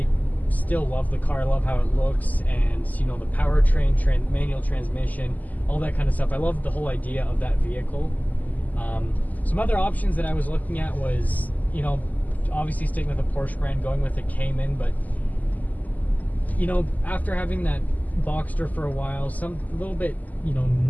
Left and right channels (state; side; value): late; right; 0.080 ms